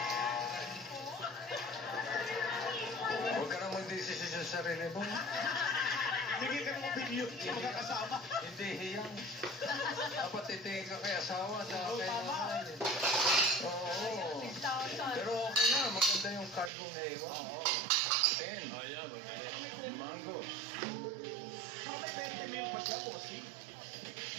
Huwag ka nang mag-desisyon sa sarili mo. Sige ka ng opinion sa mga kasama. Hindi hiyang. Dapat titingin ka kay asawa sa kay nanay. Oo. Pero okay na, maganda yung card mong naiwan. Oo. 10. Ayan, mango. Saka may 20 mil pa siya, bossing.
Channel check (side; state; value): left; drops out; at 16.7 s